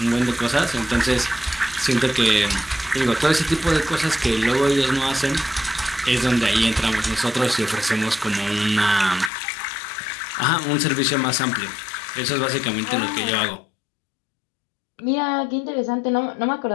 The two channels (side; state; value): right; drops out; at 9.3 s